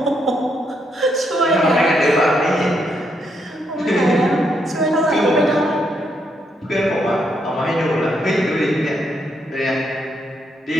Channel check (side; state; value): both; normal; correlation 0.77